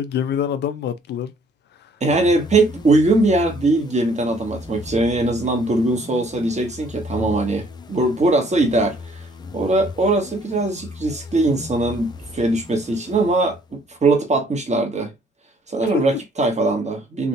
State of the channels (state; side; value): normal; both; correlation 0.61